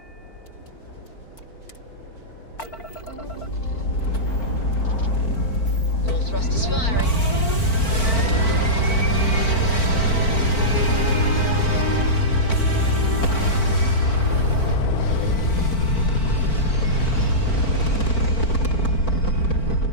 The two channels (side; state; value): right; late; 4.5 ms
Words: All thrusters firing.